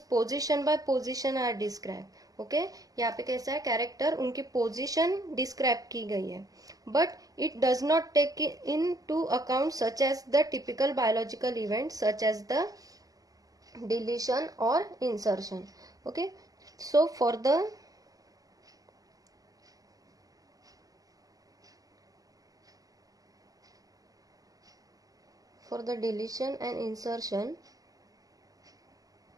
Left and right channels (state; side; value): late; left; 0.17 ms